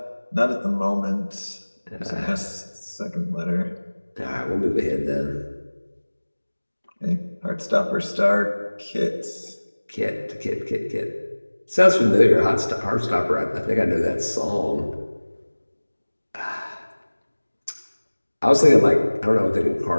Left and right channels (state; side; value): inverted; both; correlation -1.00